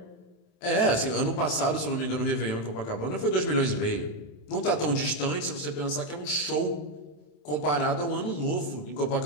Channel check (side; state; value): right; late; 27 ms